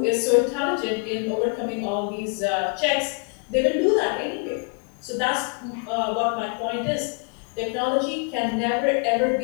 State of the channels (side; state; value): right; quieter; 37.8 dB